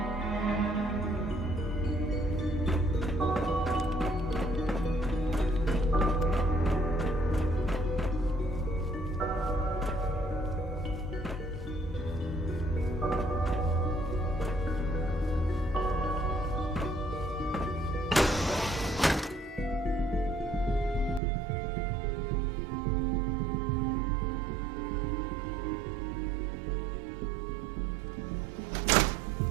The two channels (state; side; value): drops out; left; at 21.2 s